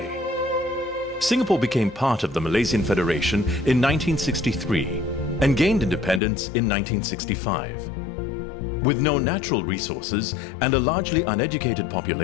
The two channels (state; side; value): drops out; right; at 6.2 s